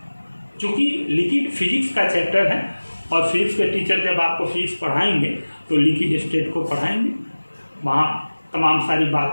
क्योंकि लिक्विड फिजिक्स का चैप्टर है और फिजिक्स के टीचर जब आपको फिजिक्स पढ़ाएंगे तो लिक्विड स्टेट को पढ़ाएंगे, वहाँ तमाम सारी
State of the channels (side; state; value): both; inverted; correlation -1.00